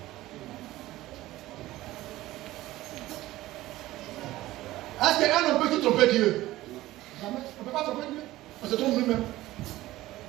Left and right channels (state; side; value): quieter; left; 16.6 dB